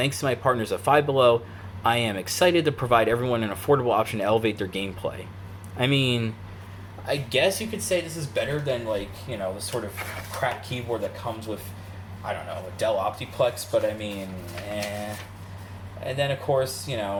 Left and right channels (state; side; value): identical; both; correlation 1.00